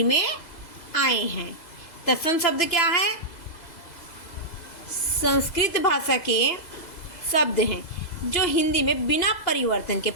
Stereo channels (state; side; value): late; right; 2.0 ms